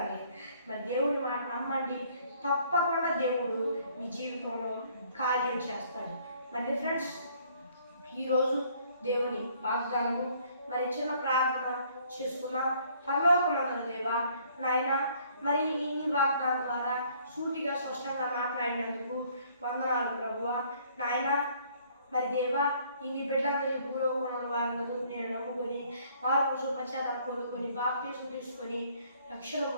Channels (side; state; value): both; inverted; correlation -0.61